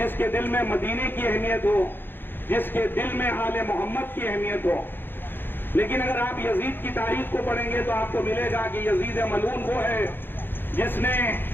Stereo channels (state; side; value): late; right; 0.099 ms